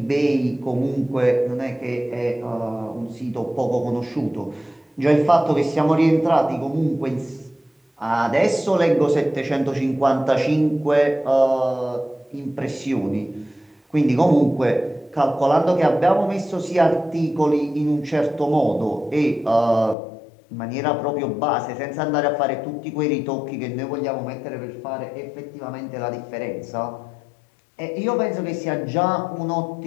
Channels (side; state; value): right; drops out; at 20.0 s